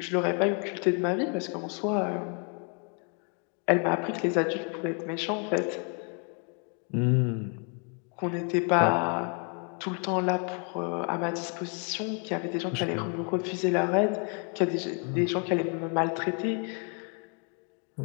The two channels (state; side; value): quieter; right; 39.4 dB